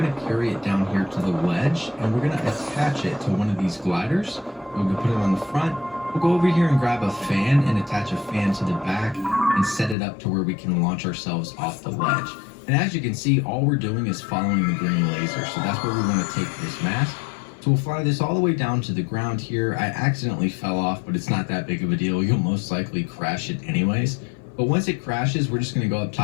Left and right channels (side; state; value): right; drops out; at 10.0 s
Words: going to carry it down here to the ledge, and we're going to attach it to one of these gliders. We're going to put it on the front. We'll go over here and grab a fan and attach a fan to the back and set it up to where we can launch ourselves off the ledge. And as you can see, all we're doing is following the green laser. So that's where we want to take this mask. So we'll fly this all the way down to the ground here. I accidentally fell off, but it's not that big of a deal. You'll most likely crash it anyways. But once it crashes, we're just going to go up